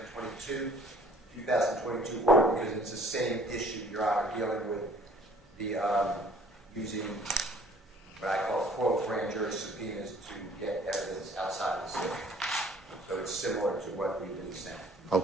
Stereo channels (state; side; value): normal; both; correlation 0.55